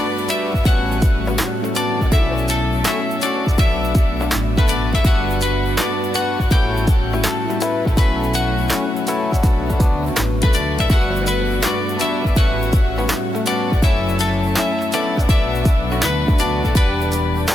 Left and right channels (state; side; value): normal; both; correlation 0.86